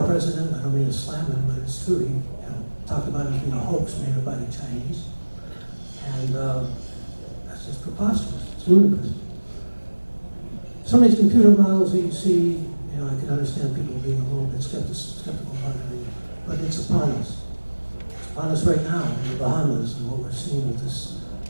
president, I don't mean to slam him, but it's true. He talked about it as being a hoax made up by the Chinese. And that's just preposterous. It's ludicrous. Some of these computer models that you see, I can understand people being a little bit skeptical about it, but it's upon us. It's upon us right now in the Bahamas, and what we're seeing with this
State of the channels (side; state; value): both; inverted; correlation -1.00